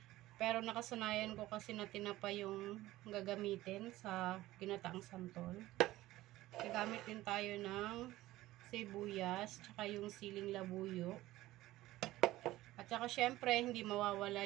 Pero nakasanayan ko kasi na tinapa yung gagamitin sa ginataang santol. Gagamit din tayo ng sibuyas. Tsaka yung siling labuyo. At saka syempre hindi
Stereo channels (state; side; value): quieter; left; 16.6 dB